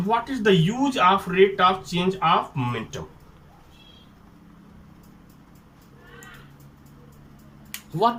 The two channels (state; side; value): identical; both; correlation 1.00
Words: What is the use of rate of change of momentum?